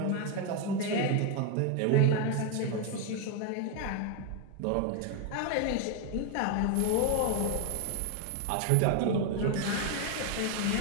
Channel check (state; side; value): different; both; correlation 0.01